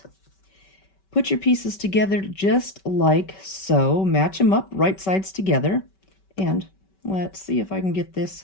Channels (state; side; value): late; right; 5.2 ms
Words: Put your pieces together just like so. Match them up, right sides together. And let's see if I can get this